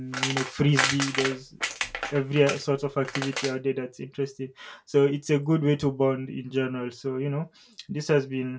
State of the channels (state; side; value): identical; both; correlation 1.00